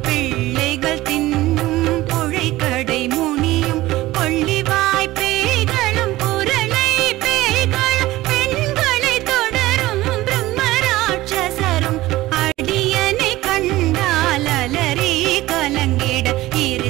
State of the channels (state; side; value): quieter; left; 17.3 dB